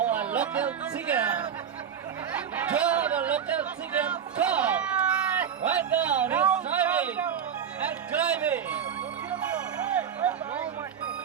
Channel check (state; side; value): quieter; left; 8.1 dB